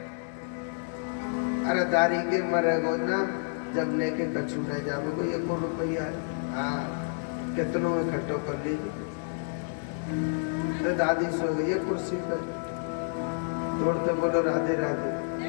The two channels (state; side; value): silent; right; 57 dB below the other